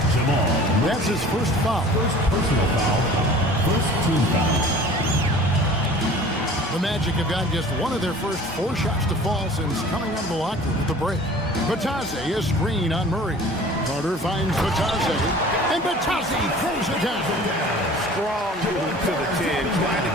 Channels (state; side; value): normal; both; correlation 0.45